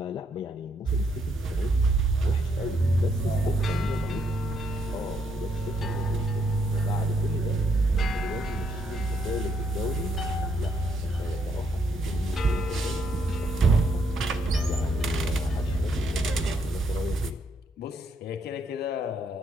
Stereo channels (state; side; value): normal; both; correlation 0.74